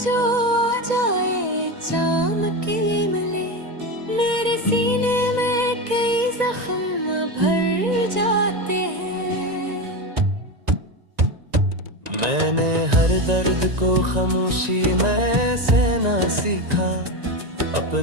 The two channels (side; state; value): left; late; 1.9 ms